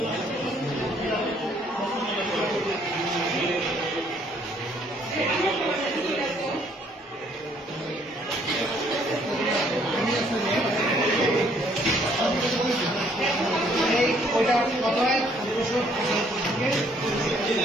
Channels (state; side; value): normal; both; correlation 0.64